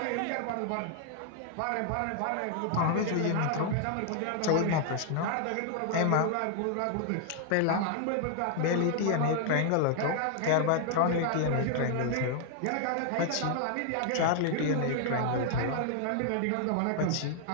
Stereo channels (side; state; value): both; different; correlation 0.00